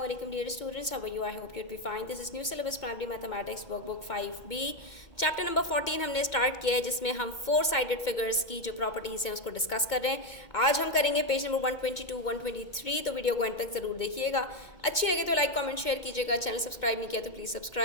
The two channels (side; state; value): right; late; 2.2 ms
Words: alaikum dear students. How are you? I hope you'd be fine. This is new syllabus primary mathematics workbook 5B. Chapter number 14 हमने start किया है जिसमें हम 4 sided figures की जो properties हैं उसको डिस्कस कर रहे हैं. आज हम करेंगे पेज नंबर 122, 123. तो वीडियो को एंड तक ज़रूर देखिएगा. अच्छी लगे तो लाइक कमेंट शेयर कीजिएगा. चैनल सब्सक्राइब नहीं किया तो प्लीज़